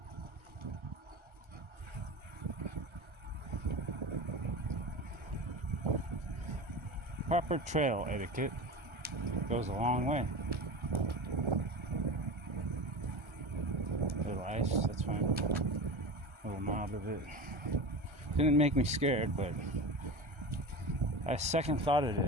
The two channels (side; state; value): left; late; 1.3 ms